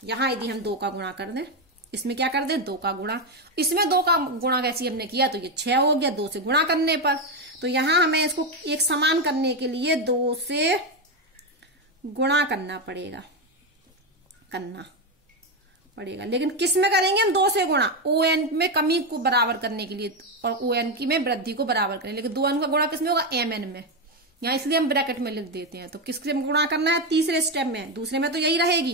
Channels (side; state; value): both; normal; correlation 0.09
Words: यहाँ यदि हम 2 का गुणा कर दें इसमें क्या कर दे 2 का गुणा, इसमें 2 का गुणा कैसे हमने किया तो ये 6 हो गया 2 से गुणा करने पर। तो यहां हमें इसको एक समान करने के लिए 2 से गुणा करना पड़ेगा, लेकिन किस में करेंगे हम 2 से गुणा, ON में कमी को बराबर करने के लिए और ON की में वृद्धि को बराबर करें, लेकिन 2n का गुणा किस में होगा MN में, यहाँ इसलिए हम ब्रैकेट में लिख देते हैं। तो किससे गुणा करना है, तीसरे स्टेप में, दूसरे में तो यही